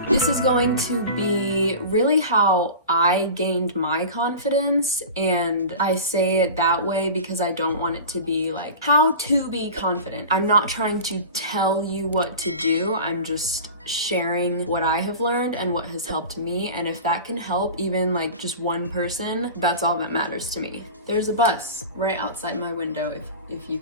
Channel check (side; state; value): both; inverted; correlation -0.33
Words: This is going to be really how I gained my confidence, and I say it that way because I don't want it to be like how to be confident. I'm not trying to tell you what to do. I'm just sharing what I have learned and what has helped me, and if that can help even like just one person, that's all that matters to me. There's a bus right outside my window if you